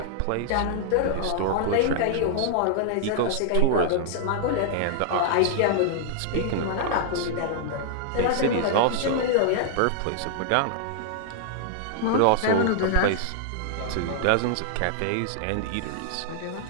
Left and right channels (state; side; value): different; both; correlation -0.01